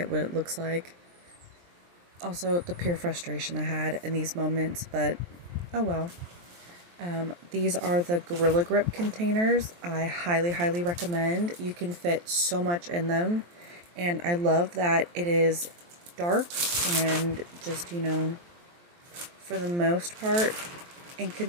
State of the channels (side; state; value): left; late; 23 ms